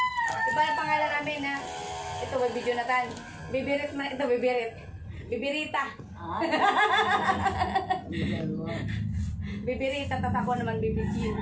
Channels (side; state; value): both; identical; correlation 1.00